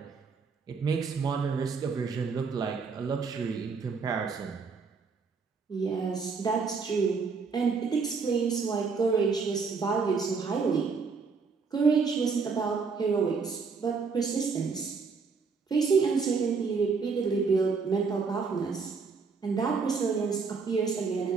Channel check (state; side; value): quieter; left; 5.0 dB